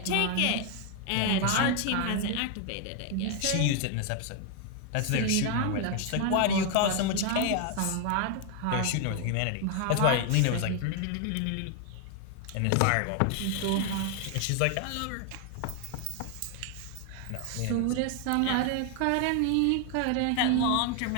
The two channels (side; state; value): both; different; correlation 0.00